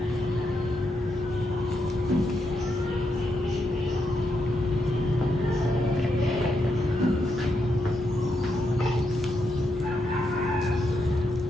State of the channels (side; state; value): both; normal; correlation 0.82